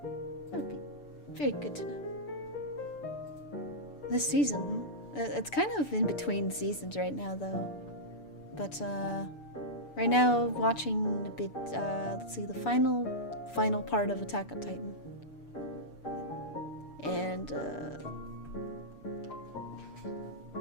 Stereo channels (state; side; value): late; right; 6.9 ms